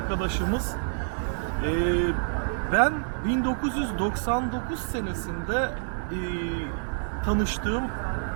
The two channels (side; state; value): left; silent; digital silence